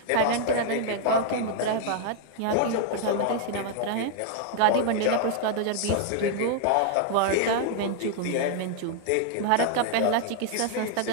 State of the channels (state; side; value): different; both; correlation 0.00